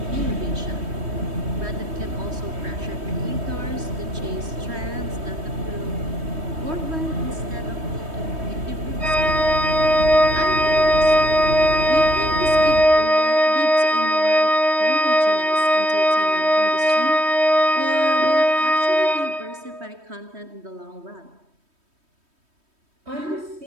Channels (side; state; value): left; late; 3.2 ms